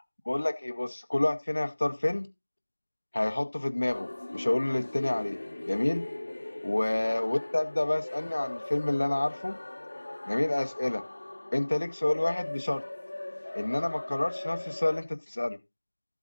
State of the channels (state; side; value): inverted; both; correlation -1.00